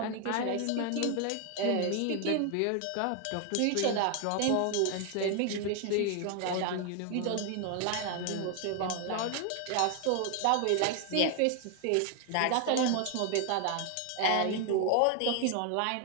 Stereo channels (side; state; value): both; different; correlation 0.01